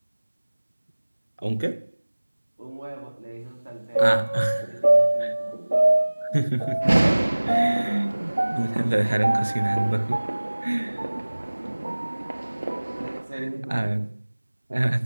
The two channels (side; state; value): both; inverted; correlation -1.00